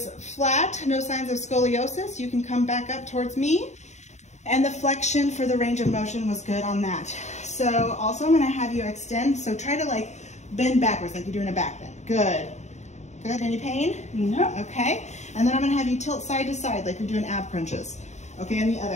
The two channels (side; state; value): right; late; 0.33 ms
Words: flat, no signs of scoliosis. You can come back up towards me. And the flexion for the range of motion was good on that. So also I'm gonna have you extend, so try to like bend backwards like you're doing a back bend. Good. Good, any pain? No. Okay, and then I'm gonna have you tilt side to side like you're doing ab crunches. Okay, and the